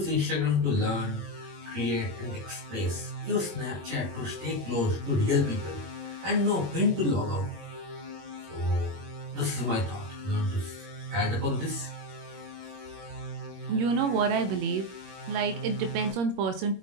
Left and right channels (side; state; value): left; late; 21 ms